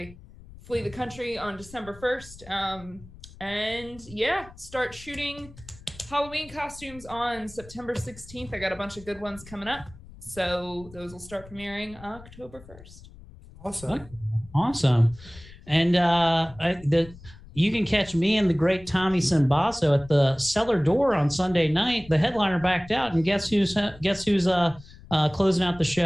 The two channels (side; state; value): left; noise; rumble, 20 dB below the sound